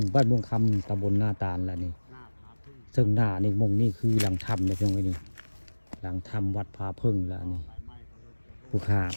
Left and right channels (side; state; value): both; inverted; correlation -1.00